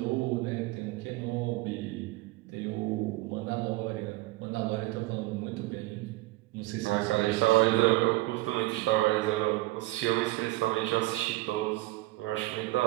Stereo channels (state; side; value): quieter; left; 19.3 dB